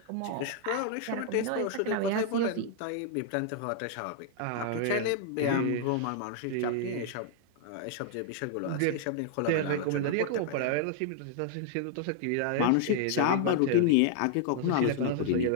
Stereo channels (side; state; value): both; different; correlation -0.01